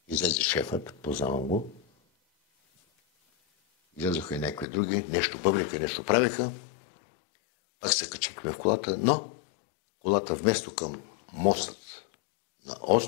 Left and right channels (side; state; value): right; drops out; at 4.7 s